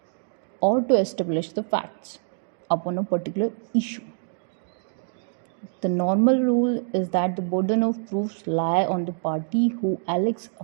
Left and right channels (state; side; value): silent; left; digital silence